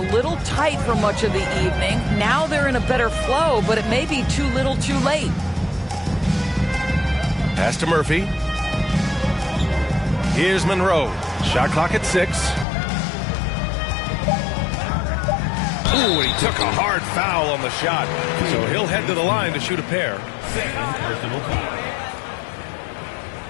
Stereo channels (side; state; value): right; drops out; at 12.7 s